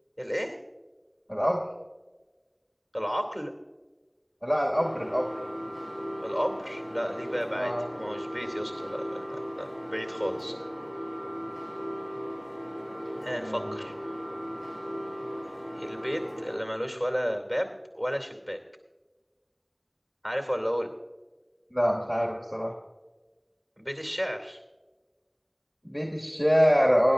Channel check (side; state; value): both; identical; correlation 1.00